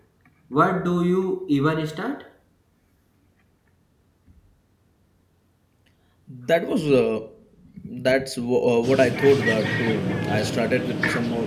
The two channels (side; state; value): both; identical; correlation 1.00